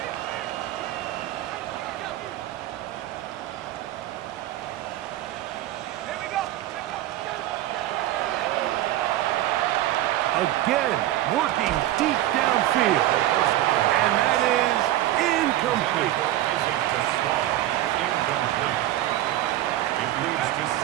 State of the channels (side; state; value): left; quieter; 14.3 dB